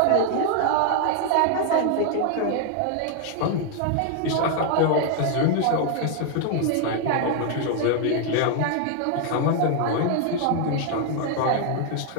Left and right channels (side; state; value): both; different; correlation 0.00